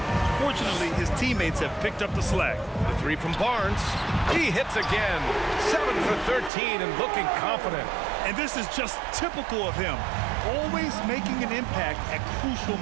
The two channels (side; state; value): left; drops out; at 6.5 s